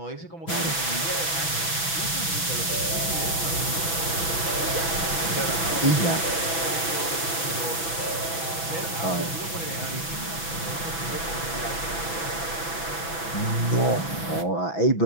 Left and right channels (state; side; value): late; right; 6.1 ms